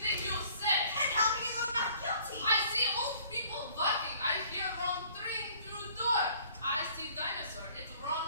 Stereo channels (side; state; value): both; inverted; correlation -0.56